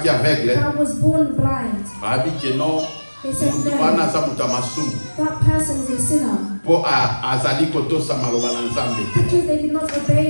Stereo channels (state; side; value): inverted; both; correlation -1.00